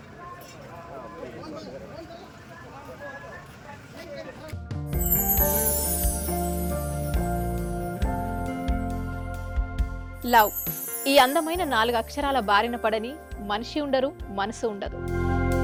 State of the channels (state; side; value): identical; both; correlation 1.00